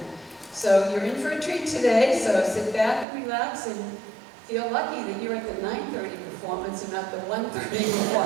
So you're in for a treat today, so sit back and relax and feel lucky that you're at the 9:30 performance and not the 1:30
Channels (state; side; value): drops out; left; at 3.1 s